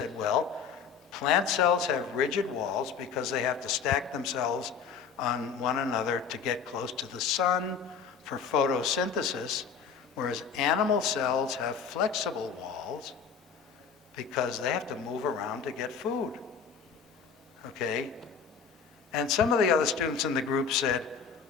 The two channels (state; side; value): quieter; right; 6.3 dB